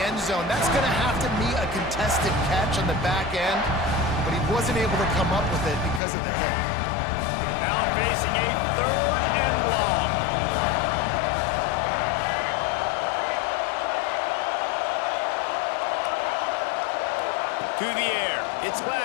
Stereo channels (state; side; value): drops out; right; at 6.0 s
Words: end zone. That's going to have to be a contested catch on the back end, but he wasn't able to come up with it because of the hit. Now facing a third and long. To the air. It's